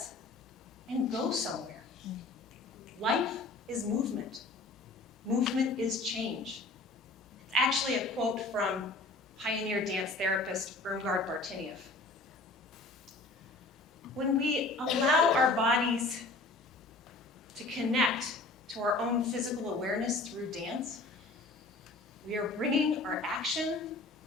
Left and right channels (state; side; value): quieter; right; 3.2 dB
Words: and go somewhere. Life is movement. Movement is change. It's actually a quote from pioneer dance therapist Irmgard Bartinieff. When we allow our bodies to connect to our own physical awareness through dance, we are bringing our action